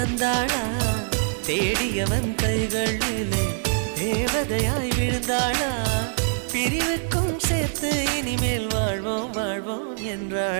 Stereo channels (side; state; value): left; silent; digital silence